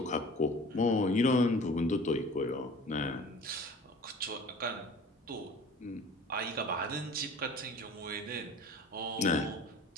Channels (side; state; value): both; normal; correlation 0.44